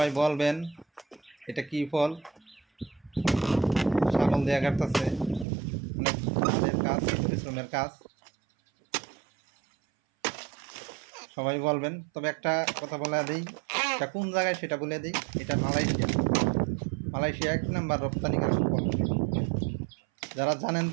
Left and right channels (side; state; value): left; drops out; at 5.5 s